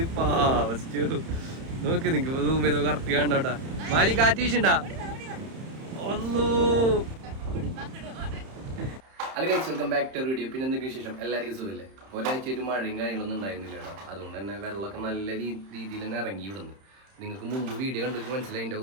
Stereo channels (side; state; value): left; late; 31 ms